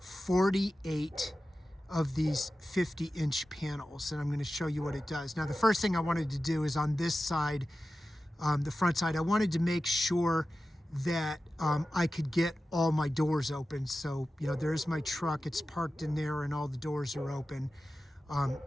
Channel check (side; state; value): both; normal; correlation 0.94